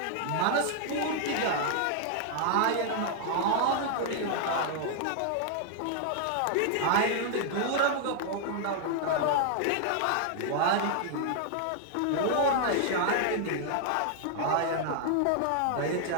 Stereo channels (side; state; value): both; different; correlation -0.01